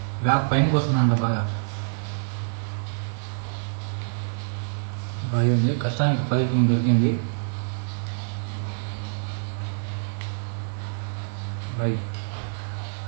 బ్యాగ్ పైనకి వస్తుందంట బాగా. బాగా ఉంది. కష్టానికి ఫలితం దొరికింది. బాయ్.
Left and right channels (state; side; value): silent; left; 61 dB below the other